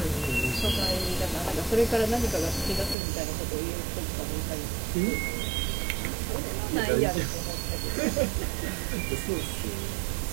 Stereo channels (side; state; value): left; drops out; at 3.0 s